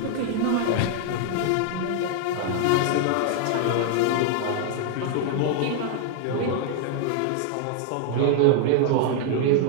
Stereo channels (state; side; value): different; both; correlation 0.00